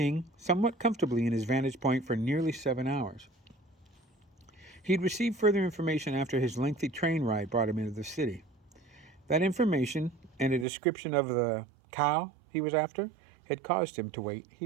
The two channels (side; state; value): left; drops out; at 10.7 s